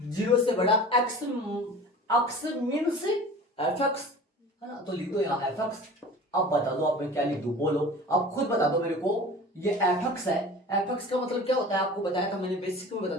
बड़ा एक्स मीन्स f(x) है ना, तो लिख दो यहाँ f(x). अब बता दो आप, मैं क्या लिख दूं, बोलो अब खुद बता दो मेरे को। ये f(x) है, f(x) का मतलब क्या होता है, आपको बताया था मैंने, बेसिक में बता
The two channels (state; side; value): normal; both; correlation 0.39